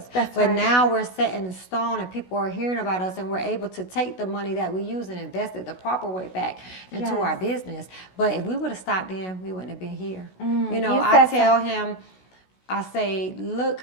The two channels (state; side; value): late; right; 16 ms